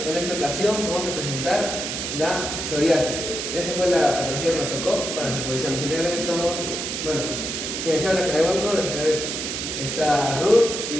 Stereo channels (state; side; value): noise; right; hiss, 4 dB below the sound